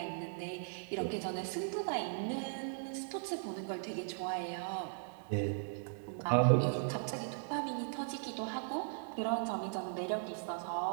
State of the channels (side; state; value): left; silent; digital silence